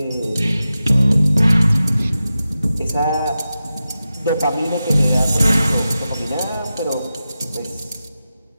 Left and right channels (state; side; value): inverted; both; correlation -0.92